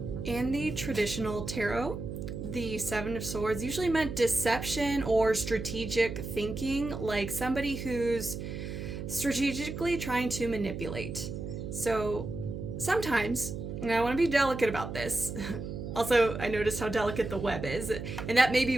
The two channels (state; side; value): noise; right; hum, 7 dB below the sound